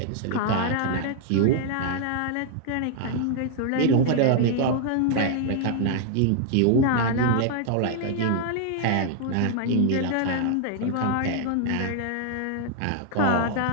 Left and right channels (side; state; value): both; different; correlation 0.00